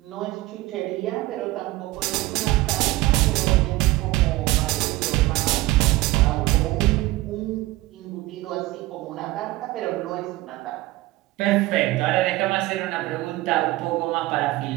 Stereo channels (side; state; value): left; quieter; 18.5 dB